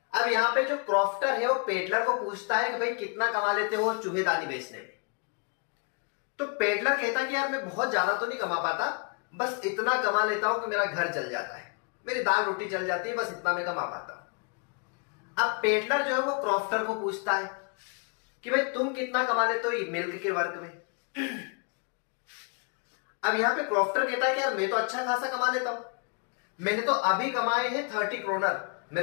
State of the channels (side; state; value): right; quieter; 36.3 dB